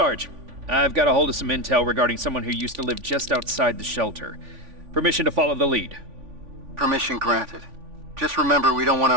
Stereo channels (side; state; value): left; late; 3.5 ms